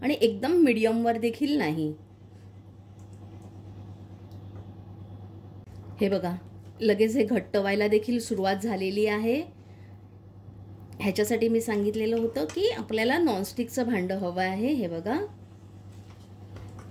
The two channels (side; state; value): both; identical; correlation 1.00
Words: आणि एकदम मीडियमवर देखील नाही। हे बघा, लगेच हे घट्ट व्हायला देखील सुरुवात झालेली आहे। ह्याच्यासाठी मी सांगितलेलं होतं की आपल्याला नॉनस्टिकचं भांडं हवं आहे। हे बघा,